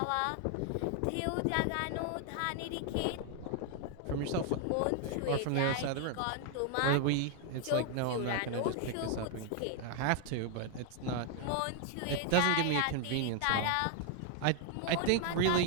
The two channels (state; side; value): different; both; correlation 0.00